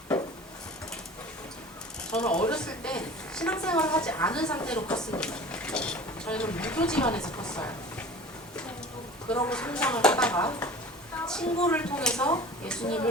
저는 어렸을 때 신앙생활을 하지 않은 상태로 컸습니다. 저희는 무교 집안에서 컸어요. 그러고 성장을 하다가 친구를 통해서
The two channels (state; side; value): normal; both; correlation 0.40